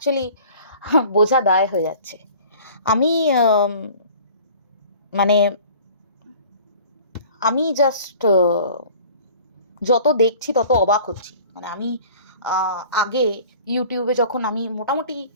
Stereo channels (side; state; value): both; inverted; correlation -0.47